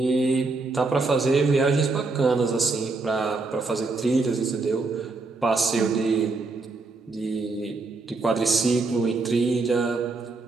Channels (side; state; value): left; quieter; 3.7 dB